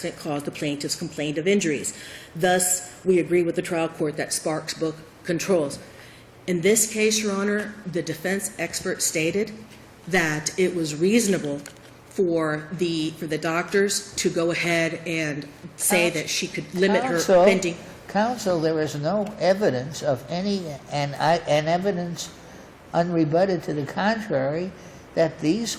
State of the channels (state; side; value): identical; both; correlation 1.00